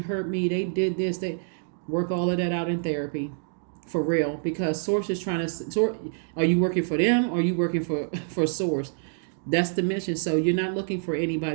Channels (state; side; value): silent; left; digital silence